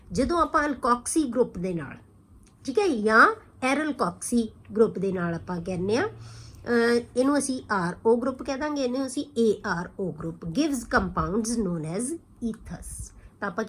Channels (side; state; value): both; identical; correlation 1.00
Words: ਜਦੋਂ ਆਪਾਂ ਅਲਕੋਕਸੀ ਗਰੁੱਪ ਦੇ ਨਾਲ, ਠੀਕ ਹੈ, ਜਾਂ ਐਰਲਕੋਕਸੀ ਗਰੁੱਪ ਦੇ ਨਾਲ ਆਪਾਂ ਕਹਿੰਦੇ ਆ, ਇਹਨੂੰ ਅਸੀਂ RO ਗਰੁੱਪ ਕਹਿ ਦਾਂਗੇ, ਇਹਨੂੰ ਅਸੀਂ ARO group, gives compounds known as ethers। ਤਾਂ ਆਪਾਂ